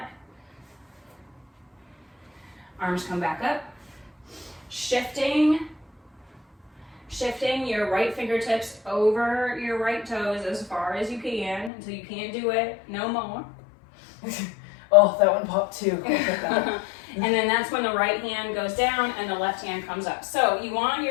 Arms come back up. Shifting your right fingertips over your right toes as far as you can until you can't do it no more. Oh, that one popped too. And then that's when the right hand goes down and the left hand comes up. So you want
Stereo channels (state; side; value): drops out; right; at 11.7 s